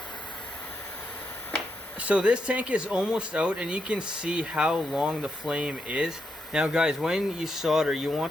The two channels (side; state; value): both; normal; correlation 0.81